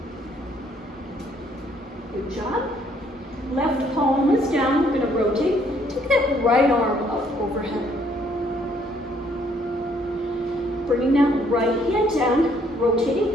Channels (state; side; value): normal; both; correlation 0.66